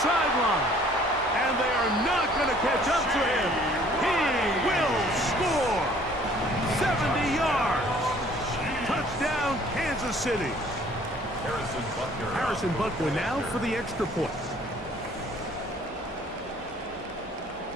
sideline, and they are not going to catch up to him. He will score. 70 yards. Touchdown, Kansas City. Harrison Butker now for the extra point.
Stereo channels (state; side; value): normal; both; correlation 0.56